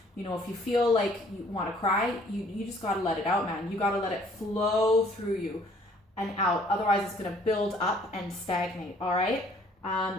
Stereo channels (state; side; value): normal; both; correlation 0.59